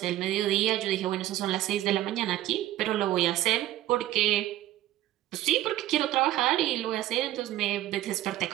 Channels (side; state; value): left; quieter; 14.5 dB